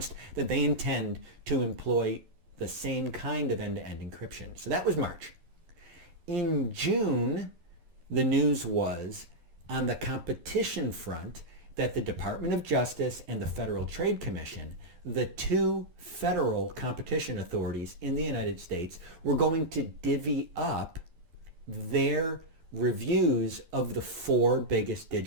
that they intend to employ the same kind of end-to-end encryption. So that was March. In June, the news was on the competition front that the Department of Justice and the Federal Trade Commission, the two federal competition authorities in the United States, were going to divvy up their reviews of the four biggest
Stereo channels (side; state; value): left; late; 11 ms